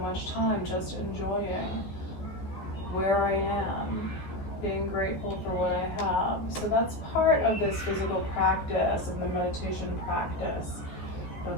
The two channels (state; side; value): late; right; 14 ms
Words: time just enjoying where I am, being grateful for what I have. So that's part of this physical practice, of the meditation practice